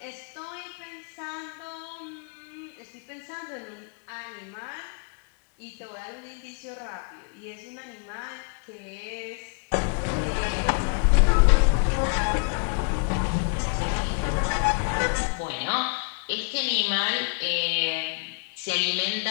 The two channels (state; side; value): quieter; right; 39.0 dB